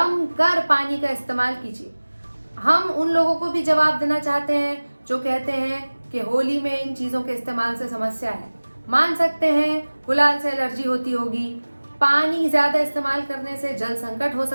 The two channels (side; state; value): both; inverted; correlation -1.00